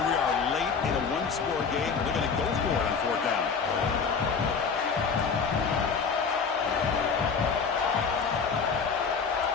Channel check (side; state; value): right; quieter; 5.6 dB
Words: Score game. They're going to go for it on fourth down.